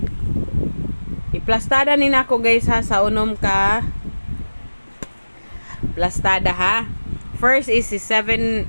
iplastada ni nako guys ha sa unom ka plastada ha. First is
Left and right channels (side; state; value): both; inverted; correlation -1.00